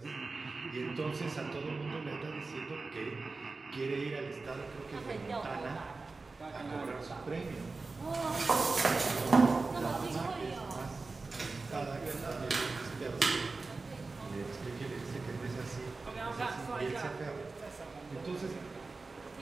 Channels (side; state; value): left; quieter; 3.8 dB